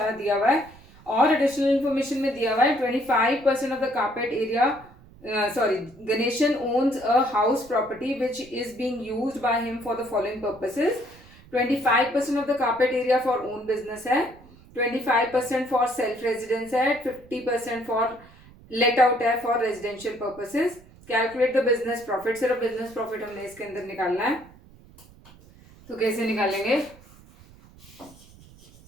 दिया हुआ है और एडिशनल इन्फॉर्मेशन में दिया हुआ है 25% of the carpet area, sorry, Ganeshan owns a house property which is being used by him for the following purposes. 25% of the carpet area for own business है, 25% for self residence है, 50% for let out है for residential purposes. Calculate the business profit. सिर्फ business profit हमने इसके अंदर निकालना है, तो कैसे निकालेंगे?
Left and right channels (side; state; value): right; noise; rumble, 23 dB below the sound